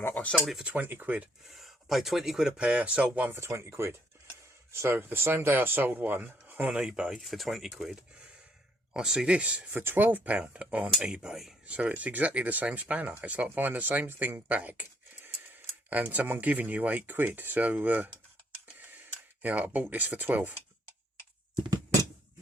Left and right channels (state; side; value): normal; both; correlation 0.68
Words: up. I sold it for 20 quid. I paid 20 quid a pair, sold one for 20 quid. So the same day I sold one on eBay for 20 quid, I see this for £12 on eBay. So it's exactly the same spanner. It's like buying the same thing back and someone giving you 8 quid. So yeah, I bought this for 12.